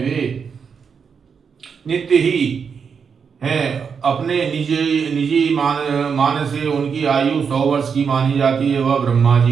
नित्य ही हैं। अपने निजी मान से उनकी आयु 100 वर्ष की मानी जाती है। वह ब्रह्मा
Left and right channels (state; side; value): quieter; left; 6.3 dB